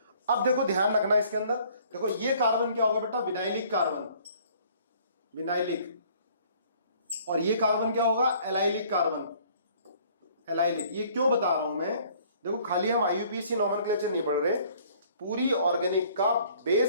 अब देखो ध्यान रखना इसके अंदर, देखो ये कार्बन क्या होगा बेटा, विनाइलिक कार्बन, विनाइलिक। और ये कार्बन क्या होगा, एलाइलिक कार्बन, एलाइलिक। ये क्यों बता रहा हूं मैं, देखो खाली हम IUPAC नॉमेनक्लेचर नहीं पढ़ रहे, पूरी ऑर्गेनिक का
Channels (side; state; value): both; inverted; correlation -0.57